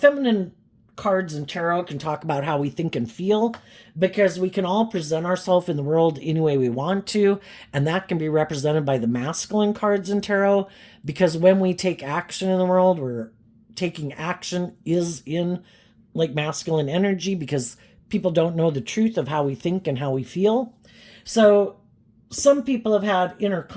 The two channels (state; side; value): identical; both; correlation 1.00